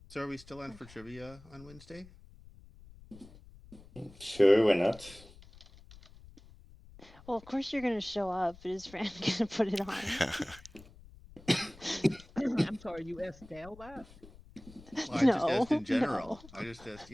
So are we still on for trivia on Wednesday? Sure, why not? Well, of course you're gonna show up. Is Fran gonna put it on? I'm sorry, you asked Dale that? Well, I just asked in general. No. I just asked,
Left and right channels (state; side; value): noise; left; rumble, 21 dB below the sound